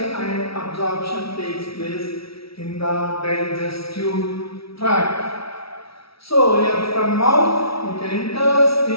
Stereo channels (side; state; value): right; late; 0.75 ms